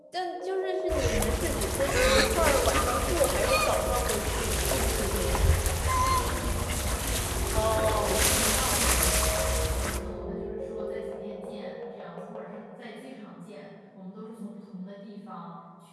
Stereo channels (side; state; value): both; identical; correlation 1.00